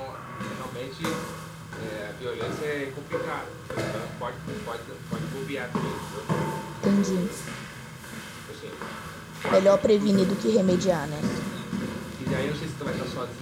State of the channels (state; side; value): identical; both; correlation 1.00